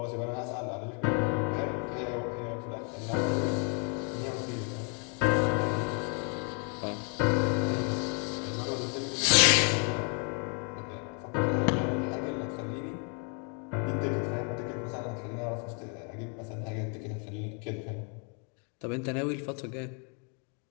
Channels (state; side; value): quieter; right; 37.6 dB